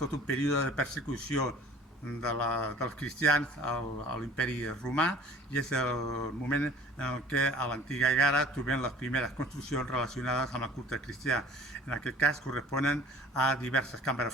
un període de persecució dels cristians a l'imperi romà, i és el moment en què a l'antiga Egara trobem les primeres construccions relacionades amb el culte cristià. En aquest cas corresponen a diverses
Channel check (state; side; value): normal; both; correlation 0.48